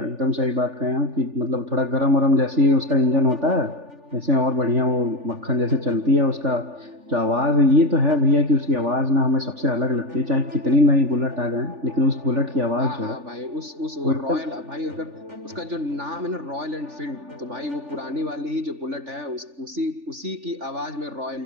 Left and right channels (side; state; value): left; late; 3.4 ms